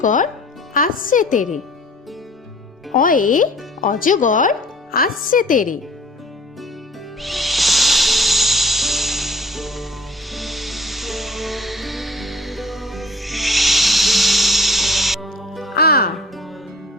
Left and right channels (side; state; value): both; normal; correlation 0.50